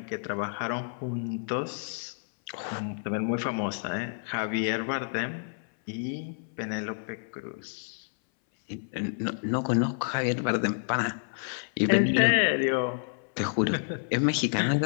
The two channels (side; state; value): right; silent; 58 dB below the other